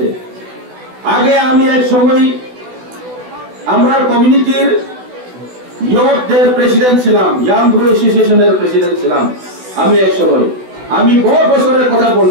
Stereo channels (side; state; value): left; late; 16 ms